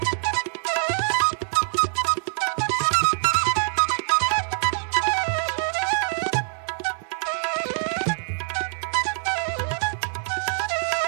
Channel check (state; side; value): silent; left; digital silence